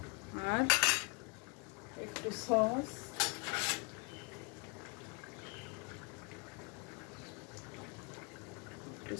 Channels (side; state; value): right; quieter; 31.3 dB